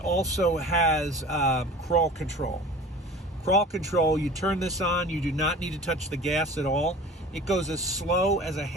has crawl control. Crawl control, you turn this on, you do not need to touch the gas at all. It goes as slow as a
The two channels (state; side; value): normal; both; correlation 0.41